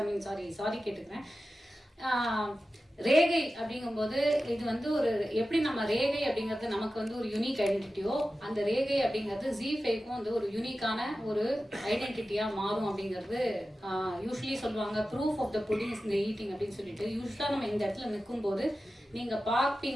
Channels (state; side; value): normal; both; correlation 0.94